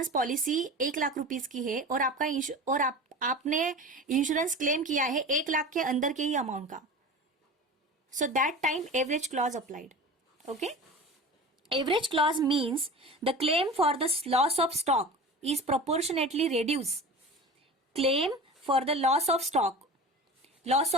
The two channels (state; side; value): normal; both; correlation 0.33